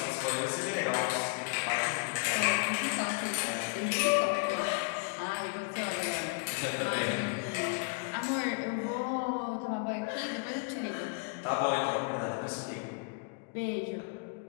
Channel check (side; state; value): right; quieter; 34.4 dB